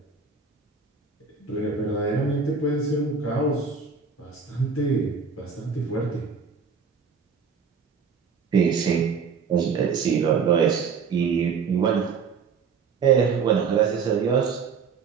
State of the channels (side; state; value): left; quieter; 5.7 dB